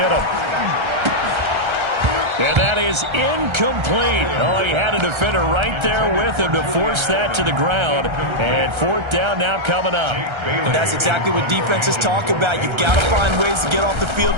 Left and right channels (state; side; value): late; left; 1.3 ms